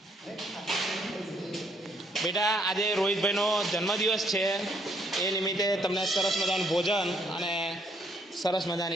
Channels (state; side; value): normal; both; correlation 0.69